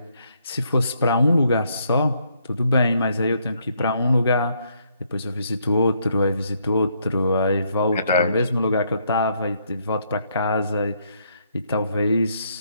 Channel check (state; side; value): inverted; both; correlation -0.72